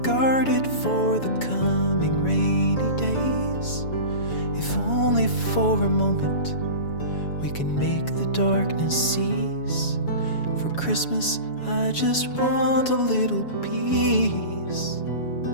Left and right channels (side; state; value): right; late; 7.2 ms